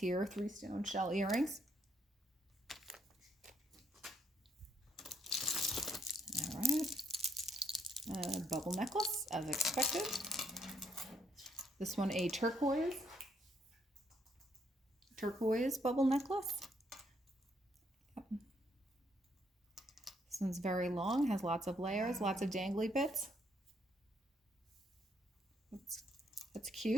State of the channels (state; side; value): normal; both; correlation 0.73